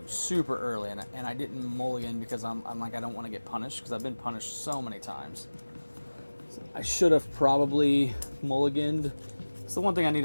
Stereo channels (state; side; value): inverted; both; correlation -1.00